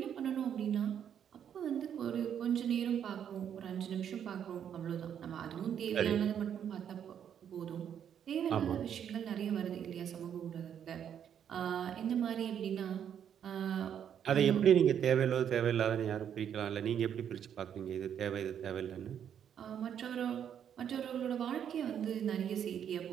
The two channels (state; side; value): quieter; left; 8.9 dB